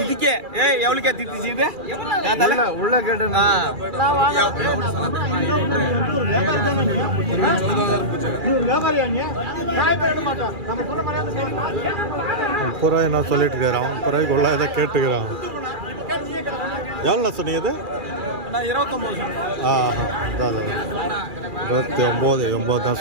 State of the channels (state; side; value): late; left; 2.4 ms